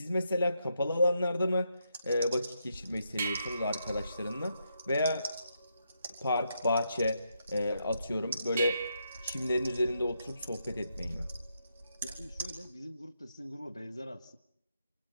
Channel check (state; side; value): inverted; both; correlation -0.81